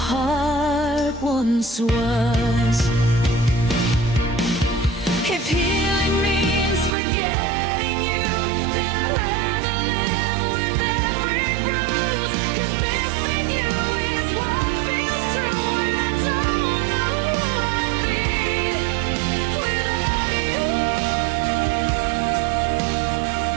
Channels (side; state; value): left; drops out; at 7.0 s